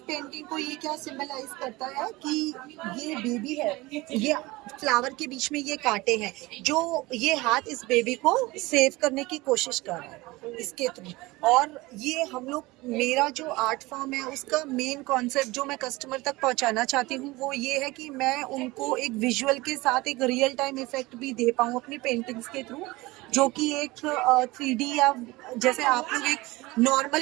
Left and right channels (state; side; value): quieter; left; 21.3 dB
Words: पेंटिंग को ये क्या सिंबलाइज करता है कि ये बेबी है, ये फ्लावर के बीच में ये कांटे हैं, जो ये हाथ इस बेबी को सेव करने की कोशिश कर रहा है इसके थ्रू। और ये हम लोग, मेरा जो आर्ट फॉर्म है उसका मेन कॉन्सेप्ट जो मैं कस्टमर तक पहुंचाना चाहती हूँ वो ये है कि मैं उनको एक विजुअल के साथ एक रियल टाइम इफेक्ट भी दे पाऊँ अपनी पेंटिंग्स के थ्रू, जो कि एक 3D या जैसे आप लोग एक